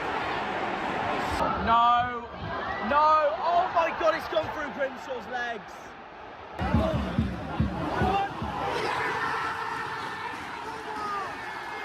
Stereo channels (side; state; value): both; identical; correlation 1.00